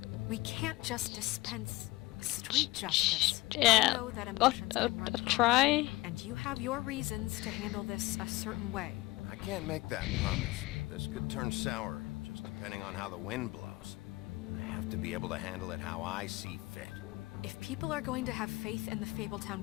We can't just dispense street justice. I Yeah. know that emotions can run high, Try. and you have your reasons to handle this a certain way. I can't make that promise. This could turn sour, just depending on how the wind blows. I have to be able to handle it how I see fit. If people are going to have faith in the Fabletown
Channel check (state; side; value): quieter; right; 20.4 dB